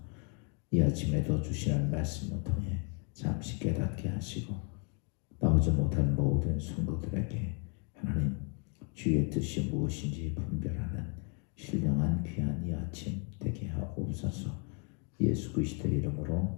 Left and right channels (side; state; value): right; quieter; 38.1 dB